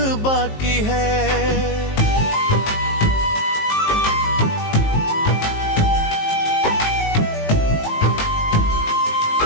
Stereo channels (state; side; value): late; right; 19 ms